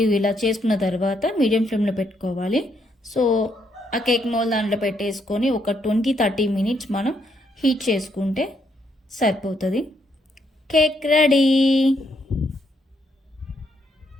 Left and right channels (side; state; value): both; normal; correlation 0.75